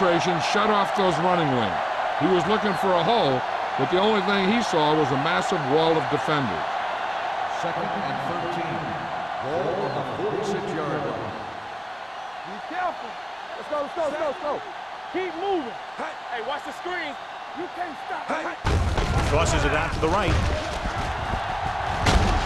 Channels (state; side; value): identical; both; correlation 1.00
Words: shut off those running lanes. He was looking for a hole, but the only thing he saw was a massive wall of defenders. Second and 13. Ball on the 46-yard line. Be careful. Let's go, let's go, let's go, let's go. Keep moving. Hey, watch the screen. You can't stop. Tosses it out to the right.